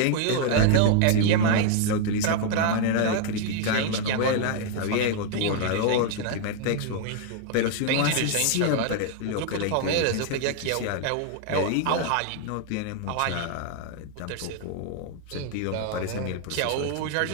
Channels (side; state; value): both; different; correlation 0.00